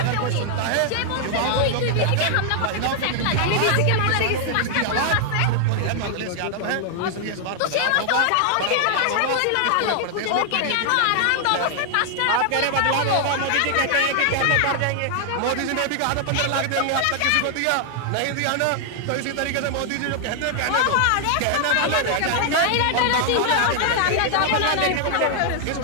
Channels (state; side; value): different; both; correlation 0.00